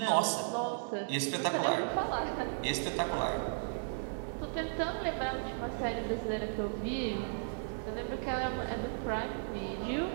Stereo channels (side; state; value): left; silent; digital silence